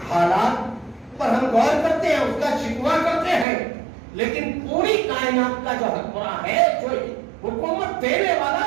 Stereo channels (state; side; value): drops out; left; at 3.5 s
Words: حالات پر ہم غور کرتے ہیں, اس کا شکوہ کرتے ہیں, لیکن پوری کائنات کا جو حکمراں ہے, جو حکومت دینے والا